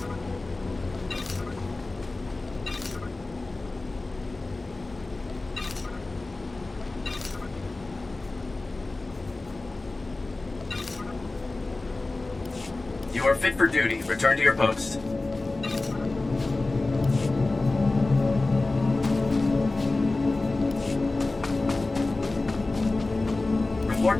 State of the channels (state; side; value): quieter; right; 3.2 dB